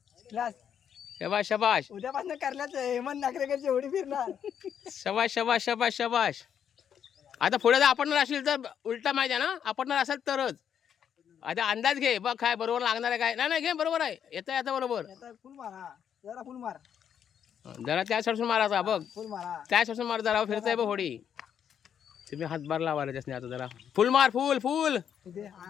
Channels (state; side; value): quieter; right; 8.6 dB